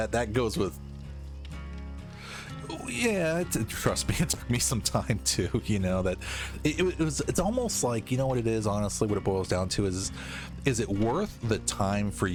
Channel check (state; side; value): identical; both; correlation 1.00